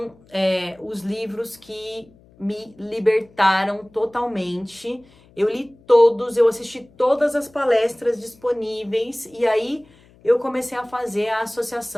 os livros que me libertaram totalmente. Eu li todos, eu assisti todas as palestras disponíveis e aí eu comecei a fazer a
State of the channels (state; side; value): noise; left; hum, 28 dB below the sound